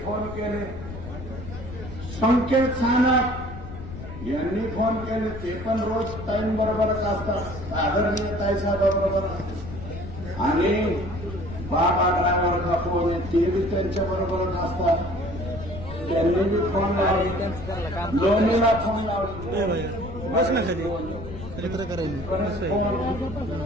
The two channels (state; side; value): noise; left; rumble, 11 dB below the sound